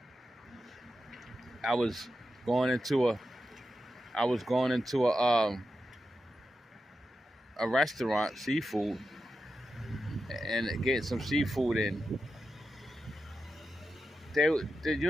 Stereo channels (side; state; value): both; normal; correlation 0.89